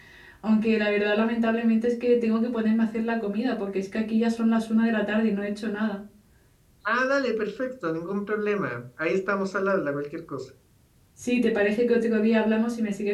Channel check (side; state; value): both; identical; correlation 1.00